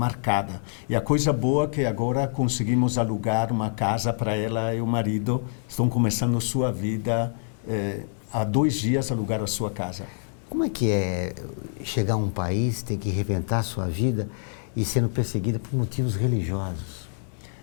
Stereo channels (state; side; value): silent; right; digital silence